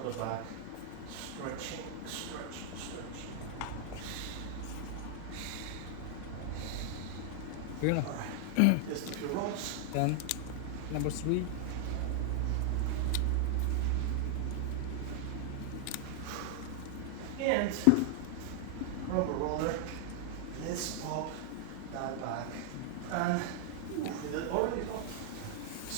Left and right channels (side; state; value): both; different; correlation 0.00